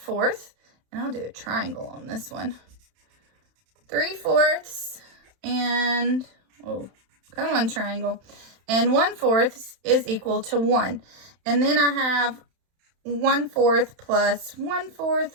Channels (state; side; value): late; left; 31 ms